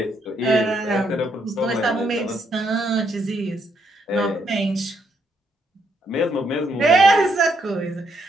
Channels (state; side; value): normal; both; correlation 0.75